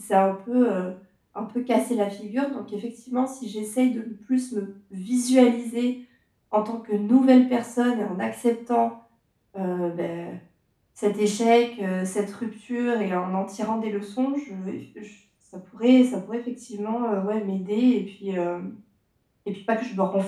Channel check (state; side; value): identical; both; correlation 1.00